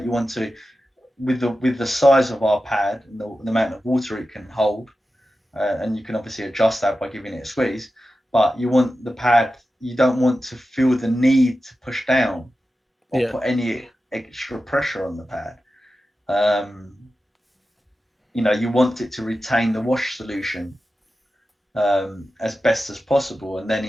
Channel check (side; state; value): both; normal; correlation 0.93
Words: You want to, with the size of our pad and the amount of water it can hold, and you can obviously adjust that by giving it a squeeze. But you want the pad. You don't want to feel the need to push down or Yeah. put any extra pressure on the pad. Um, you want it to retain the wash solution as best as possible, and then